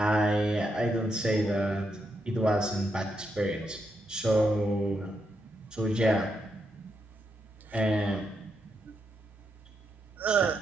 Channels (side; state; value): both; normal; correlation 0.81